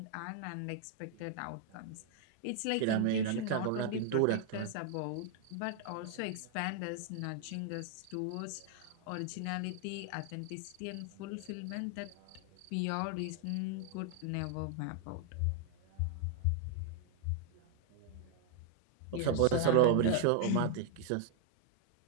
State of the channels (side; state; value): both; different; correlation 0.00